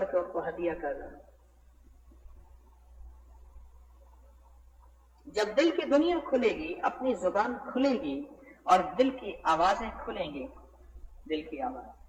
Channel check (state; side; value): identical; both; correlation 1.00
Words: کے ان کو ہدیہ کر رہا۔ جب دل کی دنیا کھلے گی، اپنی زبان کھلے گی اور دل کی آوازیں کھلیں گی، دل کی آواز۔